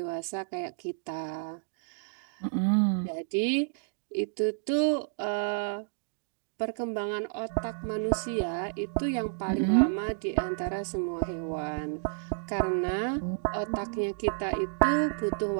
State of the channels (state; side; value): silent; left; digital silence